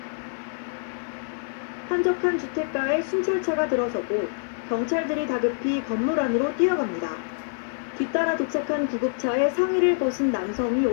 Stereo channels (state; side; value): silent; right; 61 dB below the other